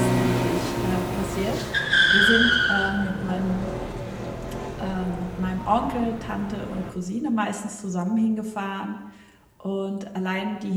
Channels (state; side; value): identical; both; correlation 1.00